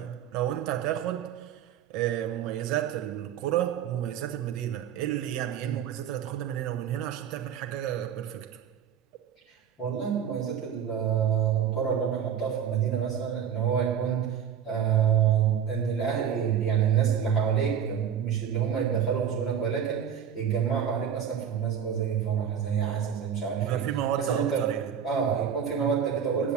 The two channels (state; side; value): quieter; left; 8.5 dB